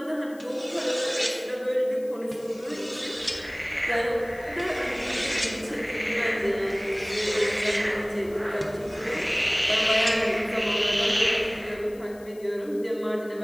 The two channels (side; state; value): left; noise; hiss, 25 dB below the sound